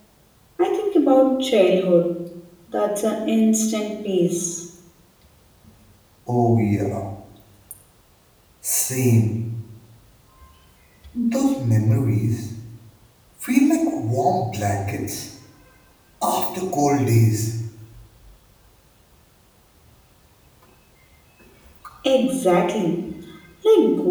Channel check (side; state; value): both; identical; correlation 1.00